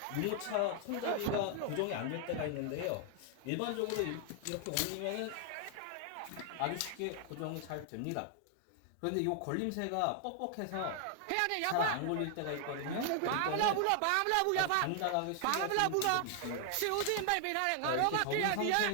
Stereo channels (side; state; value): both; different; correlation 0.00